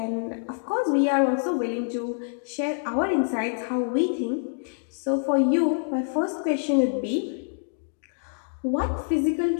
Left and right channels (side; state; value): right; silent; digital silence